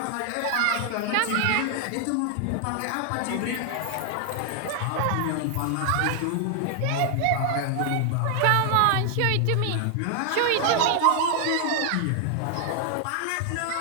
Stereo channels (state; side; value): different; both; correlation 0.00